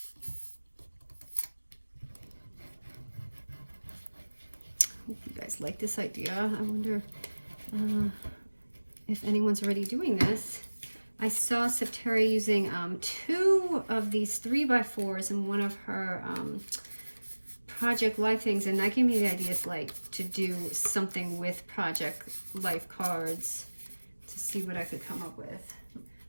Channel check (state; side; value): inverted; both; correlation -1.00